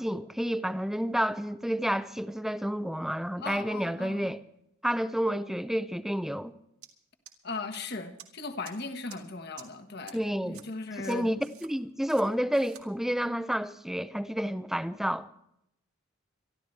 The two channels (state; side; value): normal; both; correlation 0.92